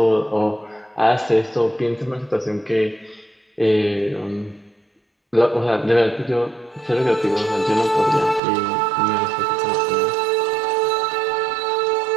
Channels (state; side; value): drops out; left; at 8.4 s